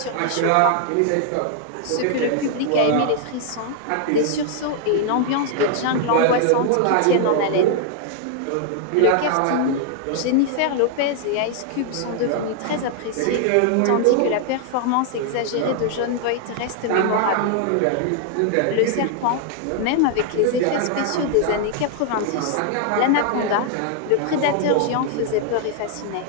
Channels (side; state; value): both; different; correlation 0.00